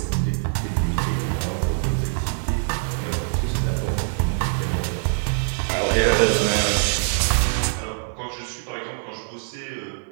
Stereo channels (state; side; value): silent; left; digital silence